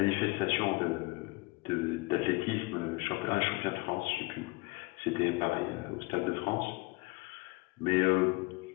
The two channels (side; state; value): right; quieter; 24.7 dB